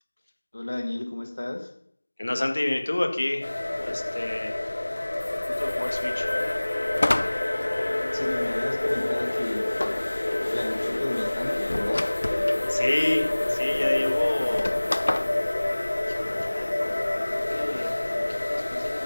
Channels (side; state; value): both; inverted; correlation -1.00